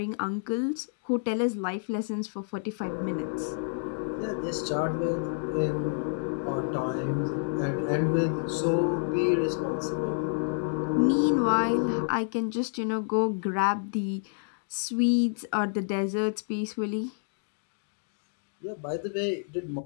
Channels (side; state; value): right; silent; digital silence